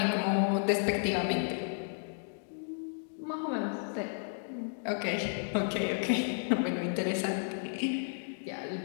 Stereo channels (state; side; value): silent; right; digital silence